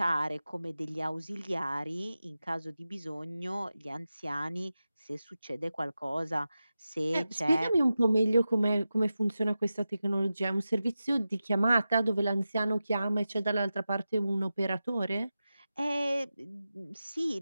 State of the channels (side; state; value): both; inverted; correlation -0.93